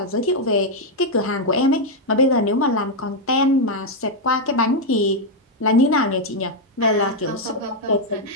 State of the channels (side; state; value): both; normal; correlation 0.00